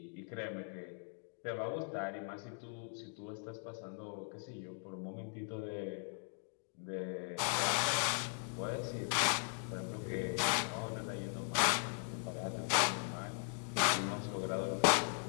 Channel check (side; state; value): right; silent; 52 dB below the other